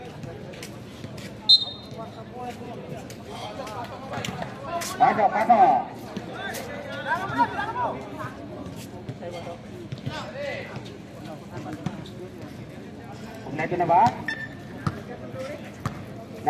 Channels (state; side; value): identical; both; correlation 1.00